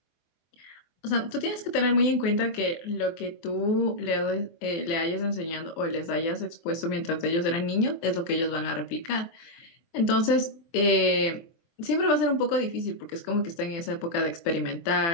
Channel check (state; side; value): late; right; 25 ms